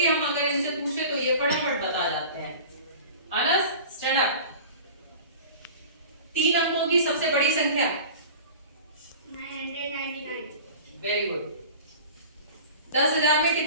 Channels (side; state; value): both; inverted; correlation -0.39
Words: हम अगर इनसे पूछे तो ये फटाफट बता जाते हैं। Anas stand up. 3 अंकों की सबसे बड़ी संख्या? 999। Very good. 10,000 में